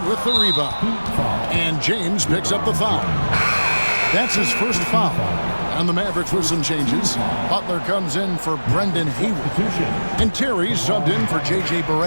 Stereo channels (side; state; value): both; inverted; correlation -1.00